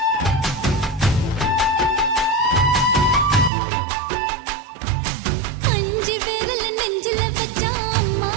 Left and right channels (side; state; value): left; drops out; at 3.5 s